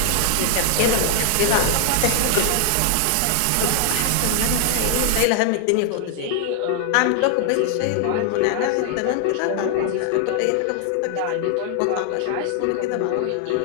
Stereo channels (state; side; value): different; both; correlation 0.00